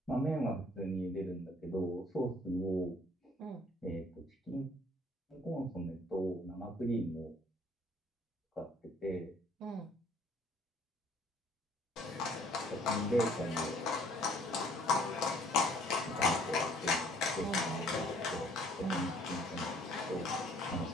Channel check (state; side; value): normal; both; correlation 0.59